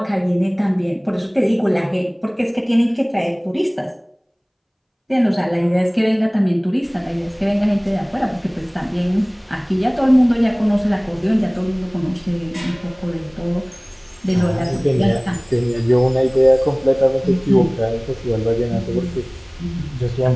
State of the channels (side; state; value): both; identical; correlation 1.00